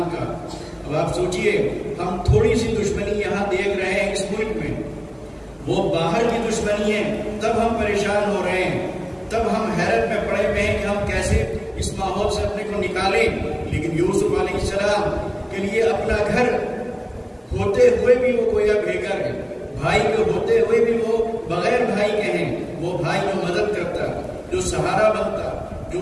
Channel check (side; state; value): both; identical; correlation 1.00